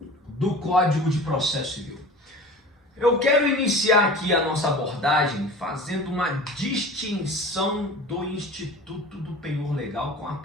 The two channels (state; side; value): normal; both; correlation 0.38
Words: do Código de Processo Civil. Eu quero iniciar aqui a nossa abordagem fazendo uma distinção do Instituto do Penhor Legal com a